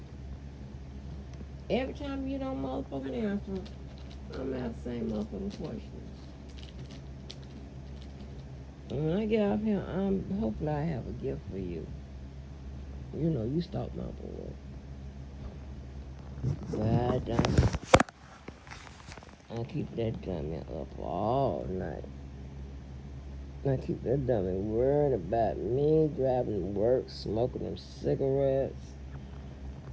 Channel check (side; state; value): both; identical; correlation 1.00